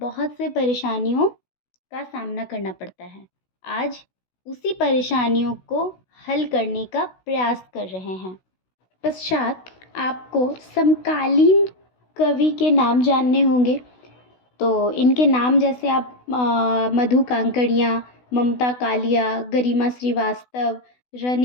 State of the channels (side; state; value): right; late; 16 ms